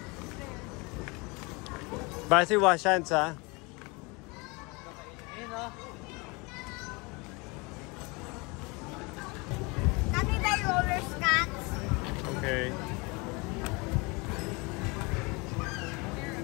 Basi Washans ha? Ayun o. Can we buy roller skates? Okay.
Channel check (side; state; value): right; quieter; 27.4 dB